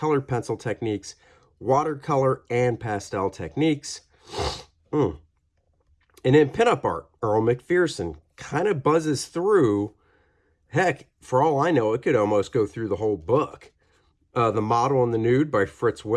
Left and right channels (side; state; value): both; identical; correlation 1.00